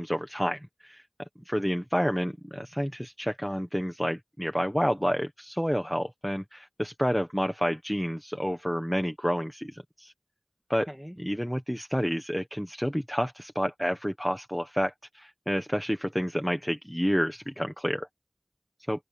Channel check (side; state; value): both; identical; correlation 1.00